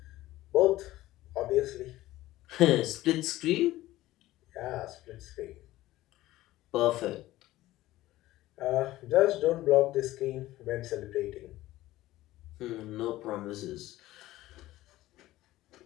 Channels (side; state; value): right; quieter; 16.2 dB